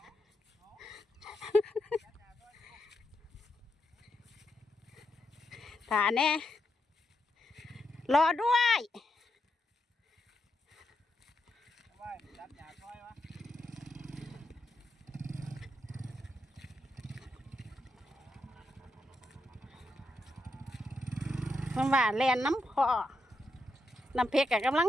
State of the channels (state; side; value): normal; both; correlation 0.83